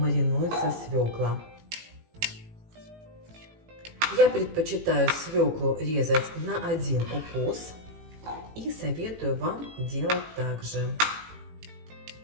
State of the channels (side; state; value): left; late; 18 ms